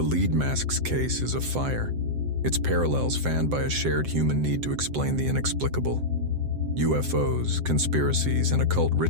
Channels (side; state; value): left; late; 7.7 ms